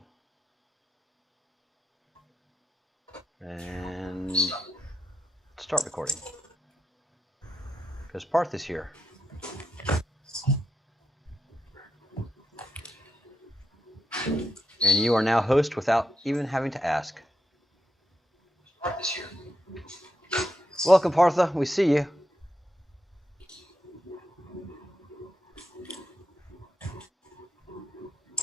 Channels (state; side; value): normal; both; correlation 0.85